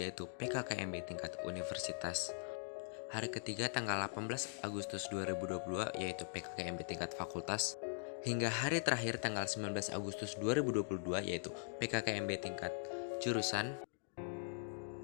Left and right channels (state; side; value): silent; right; digital silence